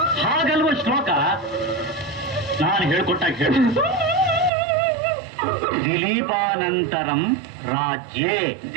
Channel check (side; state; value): left; drops out; at 4.5 s